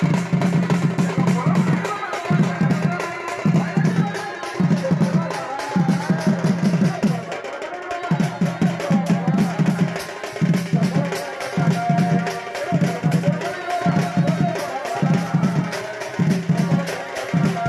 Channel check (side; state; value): both; identical; correlation 1.00